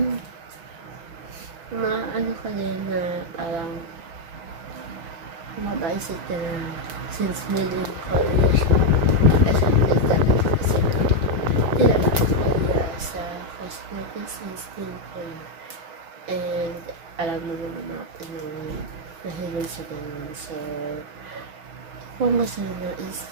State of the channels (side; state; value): left; late; 6.0 ms